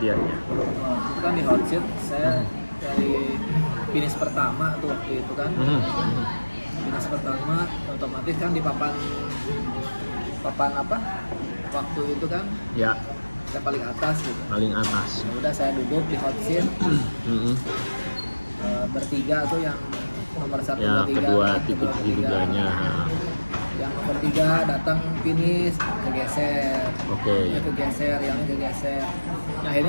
Kan di hot seat saya dari finish pertama tuh waktu itu kan. Finish pertama otomatis kan di papan apa waktu itu kan Ya, saya paling atas gitu. paling atas. Ya udah saya duduk di hot seat bertiga tuh yang nomor 1, Ya, 2, 3 kedua kan, titik kedua, ketiga. tiduganya. Yang nomor 3 datang finish kegeser. Oke. Ini kegeser, yang ini kegeser. Nah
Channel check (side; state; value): both; inverted; correlation -1.00